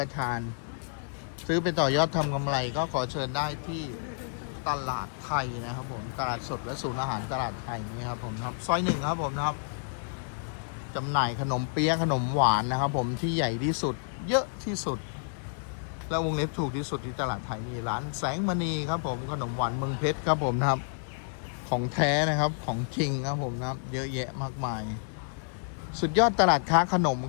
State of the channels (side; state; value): right; silent; digital silence